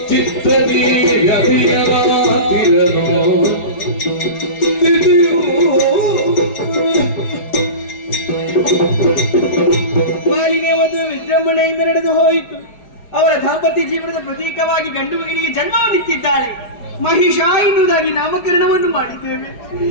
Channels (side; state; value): right; late; 4.8 ms